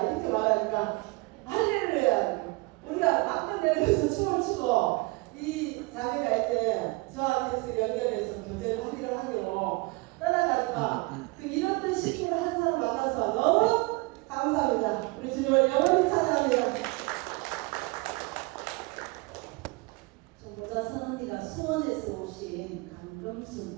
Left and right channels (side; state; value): left; quieter; 25.4 dB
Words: 이렇게 말하니까 할렐루야. 우리가 막판 내려서 춤을 추고 이 자매가 이제 저한테 연결해서 교제를 하기로 하기로 떠나가지고 그 이런 식으로 한 사람 만나서 너무 감사합니다. 우리 주님을 영원히 찬양합니다. 전도자 선언니가 수원에서 오신